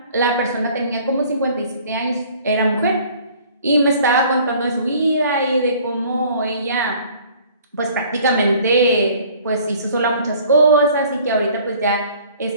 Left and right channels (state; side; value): inverted; both; correlation -0.53